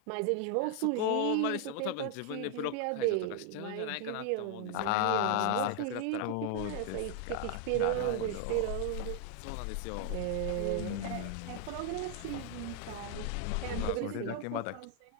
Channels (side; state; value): both; different; correlation 0.00